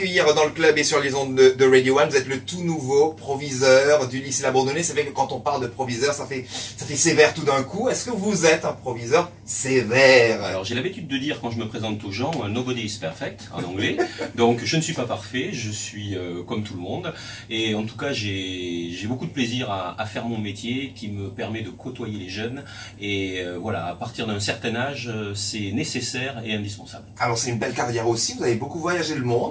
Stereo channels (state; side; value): identical; both; correlation 1.00